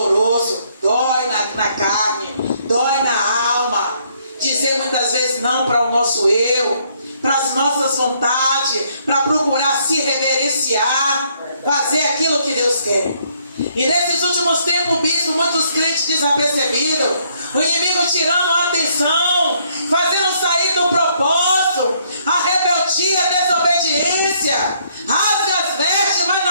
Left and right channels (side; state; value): both; inverted; correlation -0.68